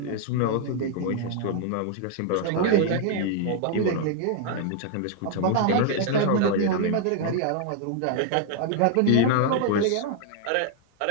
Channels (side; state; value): both; different; correlation 0.00